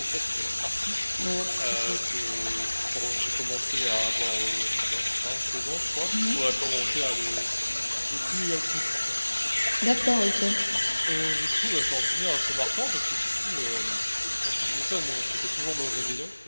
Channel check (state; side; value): inverted; both; correlation -1.00